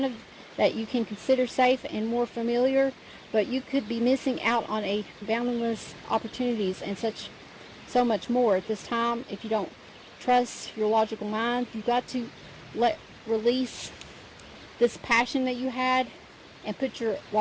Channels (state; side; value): identical; both; correlation 1.00